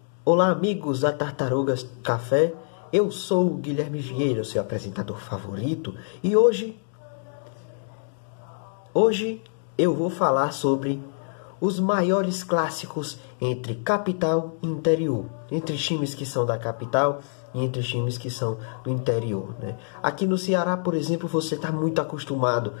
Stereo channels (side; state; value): right; silent; digital silence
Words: Olá amigos da Tartarugas Café, eu sou o Guilherme Vieira, seu apresentador favorito, e hoje eu vou falar sobre os maiores clássicos entre capital e interior, entre times que são da capital e entre times que são do interior, né? Aqui no Ceará, por exemplo, você está muito acostumado